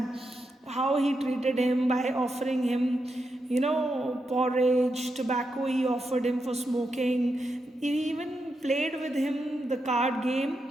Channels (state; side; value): normal; both; correlation 0.85